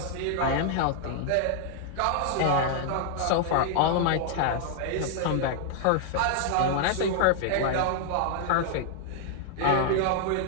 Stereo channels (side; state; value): both; different; correlation 0.00